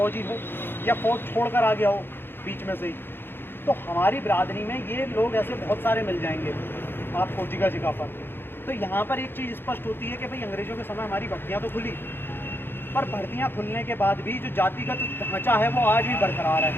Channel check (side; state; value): right; late; 0.10 ms